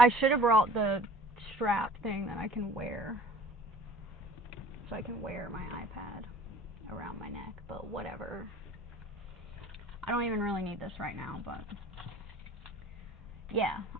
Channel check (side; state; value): both; normal; correlation 0.48